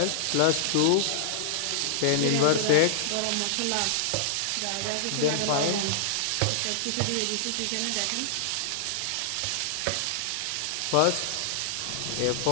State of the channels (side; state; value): both; different; correlation -0.01